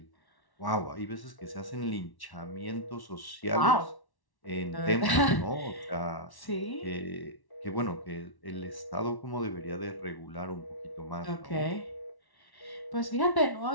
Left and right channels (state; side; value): late; right; 1.1 ms